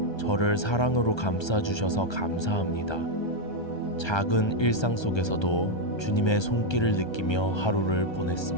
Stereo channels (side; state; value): right; late; 1.3 ms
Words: 저를 사랑으로 감싸주셔서 감사합니다. 작은 일상 속에서도 주님의 손길을 느끼며 하루를